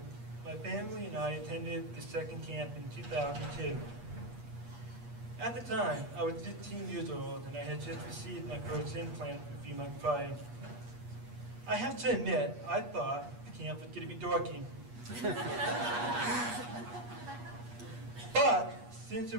my family and I attended the second camp in 2002. At the time, I was 15 years old, and I had just received my first implant a few months prior. I have to admit, I thought camp was going to be dorky. But since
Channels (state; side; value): late; left; 8.4 ms